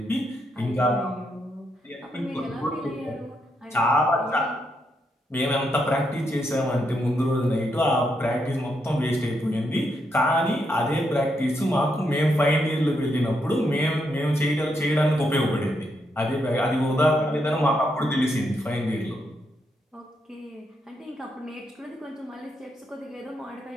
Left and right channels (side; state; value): both; normal; correlation 0.80